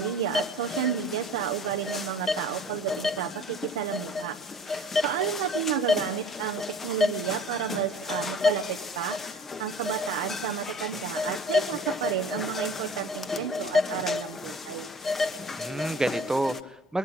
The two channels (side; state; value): both; normal; correlation 0.46